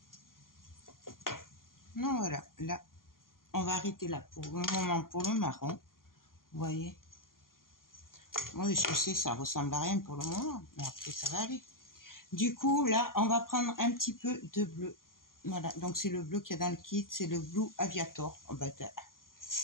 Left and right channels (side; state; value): right; late; 0.91 ms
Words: Non, voilà. Là, on va arrêter là pour le moment pour le marron. Vous voyez. Oui, je sais, ça ressemble à rien pour le moment. Mais après, ça va aller. Du coup, là, on va prendre un petit peu de bleu. Voilà. Donc, c'est le bleu qu'il y a dans le kit. C'est le Blue Aviator. Oh, bah,